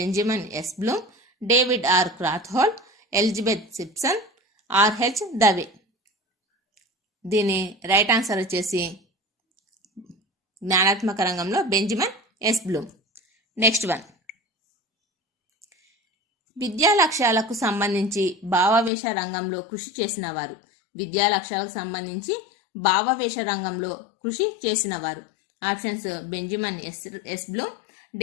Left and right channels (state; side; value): drops out; right; at 18.9 s